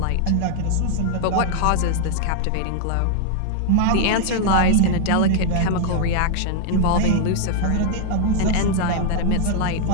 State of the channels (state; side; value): different; both; correlation 0.00